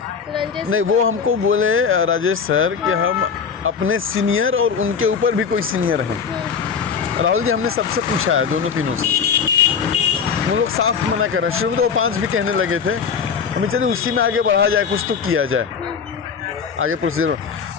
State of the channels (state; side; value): quieter; right; 6.3 dB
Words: नहीं, वो हमको बोले राजेश सर कि हम अपने सीनियर और उनके ऊपर भी कोई सीनियर हैं। राहुल जी, हमने सबसे पूछा है, दोनों तीनों से, वो लोग साफ मना कर रहे हैं। शुरू में तो वो 5 भी कहने लगे थे, हमें चलिए उसी में आगे बढ़ा जाए, कुछ तो किया जाए आगे प्रोसीजर।